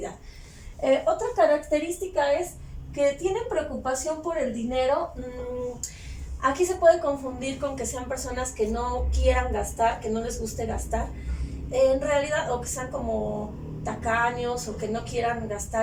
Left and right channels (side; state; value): both; identical; correlation 1.00